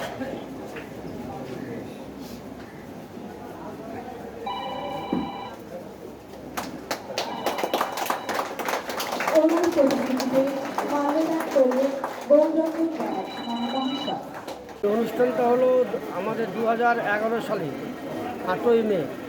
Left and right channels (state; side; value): identical; both; correlation 1.00